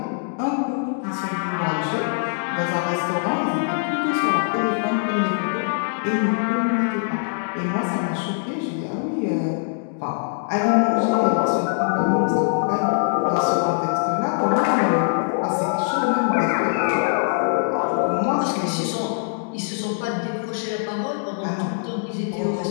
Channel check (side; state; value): right; silent; 64 dB below the other